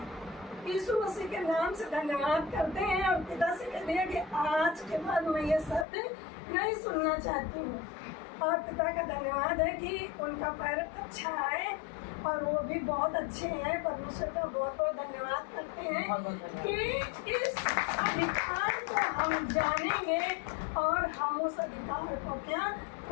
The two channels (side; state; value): right; drops out; at 5.9 s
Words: यीशु मसीह के नाम से धन्यवाद करते हैं और पिता से कह दिया कि आज के बाद मैं ये शब्द नहीं सुनना चाहती हूँ। और पिता का धन्यवाद है कि उनका पैर अच्छा है और वो भी बहुत अच्छे हैं। परमेश्वर का बहुत बहुत धन्यवाद करते हैं कि इस अधिकार को हम जानेंगे और हम उस अधिकार को क्या